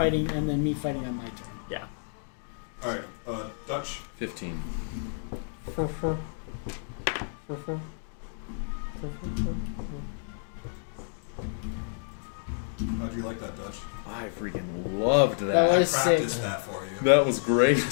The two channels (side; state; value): right; silent; digital silence